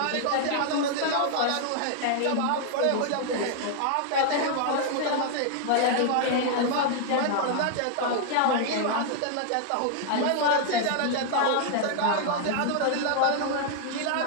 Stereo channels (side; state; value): both; different; correlation 0.00